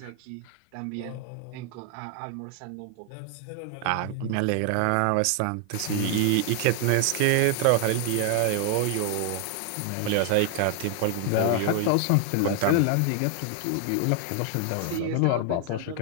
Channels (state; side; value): different; both; correlation 0.00